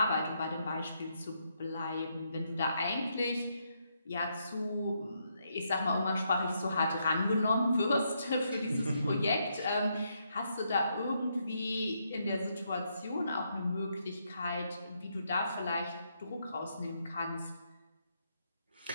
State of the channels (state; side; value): inverted; both; correlation -0.78